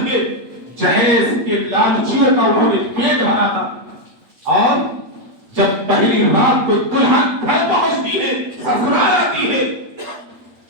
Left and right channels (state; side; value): late; left; 8.5 ms